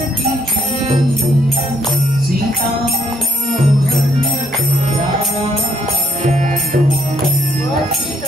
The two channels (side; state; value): both; normal; correlation 0.70